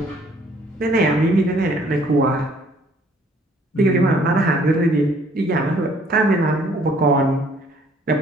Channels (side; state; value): both; normal; correlation 0.60